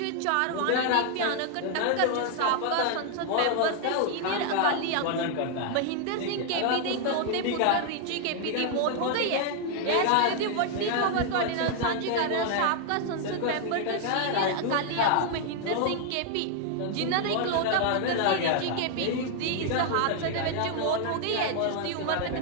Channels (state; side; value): different; both; correlation 0.00